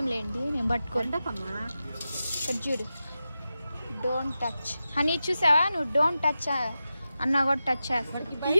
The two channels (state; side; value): inverted; both; correlation -0.92